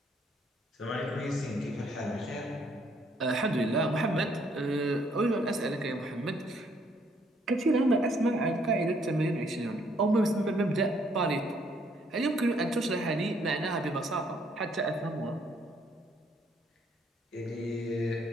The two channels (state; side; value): normal; both; correlation 0.67